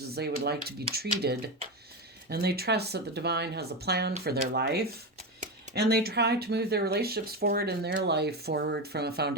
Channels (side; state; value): both; normal; correlation 0.16